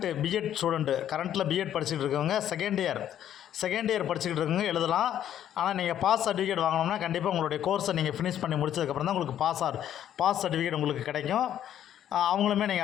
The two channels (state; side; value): quieter; right; 10.7 dB